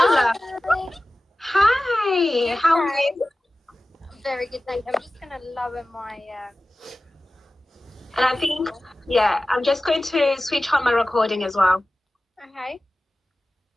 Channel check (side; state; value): both; normal; correlation 0.96